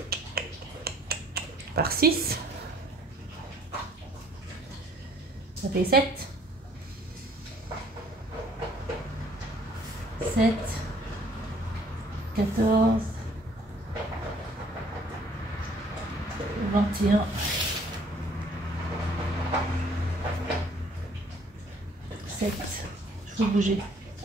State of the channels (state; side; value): normal; both; correlation 0.59